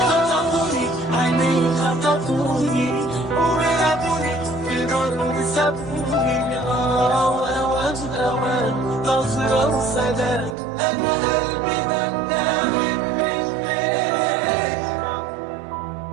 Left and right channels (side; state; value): left; drops out; at 10.6 s